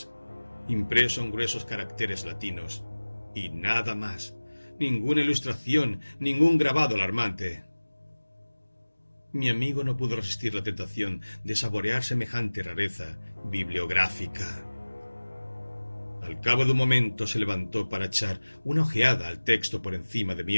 impreso en gruesos caracteres latinos. Y nada más. Ninguna ilustración, ningún grabado alarmante. Mi amigo no pudo resistir la tentación de saborear semejante rareza bibliográfica. Al cabo de un momento se levantó para echar una ojeada al texto por encima de mi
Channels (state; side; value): inverted; both; correlation -1.00